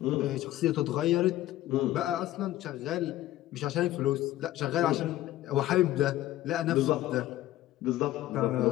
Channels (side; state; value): right; quieter; 14.7 dB